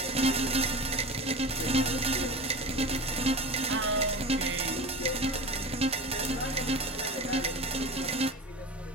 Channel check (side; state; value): both; normal; correlation 0.32